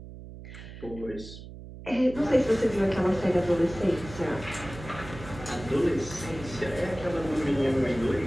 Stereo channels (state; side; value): noise; right; hum, 14 dB below the sound